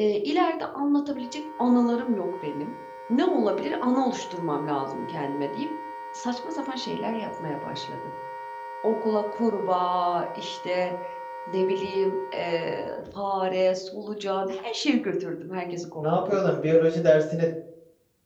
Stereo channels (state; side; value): identical; both; correlation 1.00